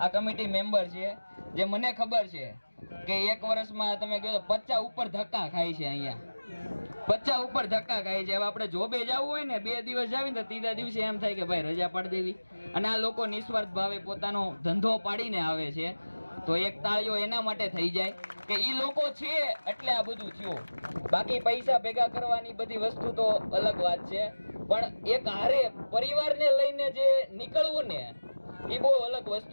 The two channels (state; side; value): inverted; both; correlation -1.00